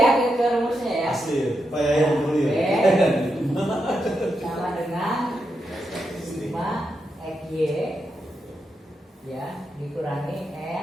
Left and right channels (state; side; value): normal; both; correlation 0.85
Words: ke rumusnya ya. asli supaya yang dulu ya. Sama dengan sigma XY ya dikurangi